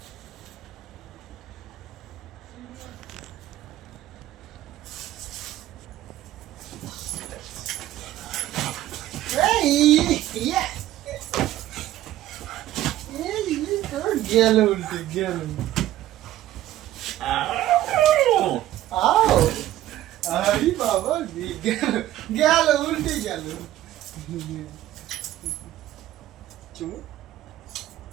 গেল উল্টে গেল। আরে বাবা গেল উল্টে গেল।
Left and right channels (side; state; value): left; quieter; 13.9 dB